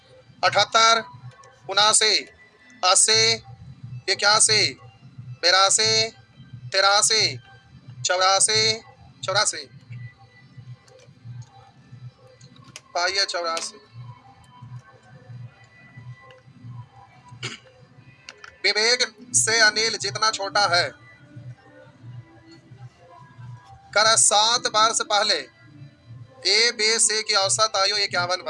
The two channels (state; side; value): identical; both; correlation 1.00